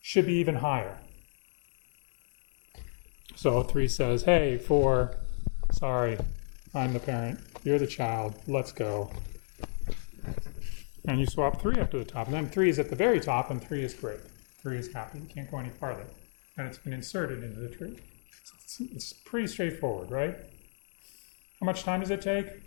should be even higher. So 3 says, hey, 4, sorry, I'm the parent, you're the child, let's go. And you swap 3 up to the top, and then 3 is at the very top, and 3 is great. 3 is happy, you can't go any farther. And it's been inserted into the tree. It's pretty straightforward, right? How much time does it take?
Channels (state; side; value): silent; right; 57 dB below the other